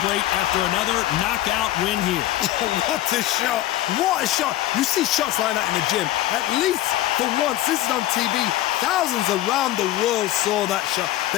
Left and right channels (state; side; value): quieter; right; 14.8 dB